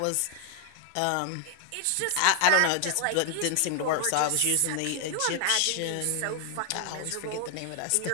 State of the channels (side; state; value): both; different; correlation 0.00